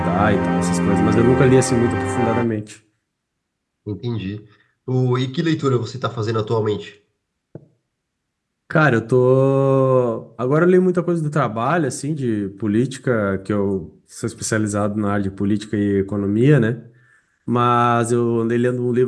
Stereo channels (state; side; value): identical; both; correlation 1.00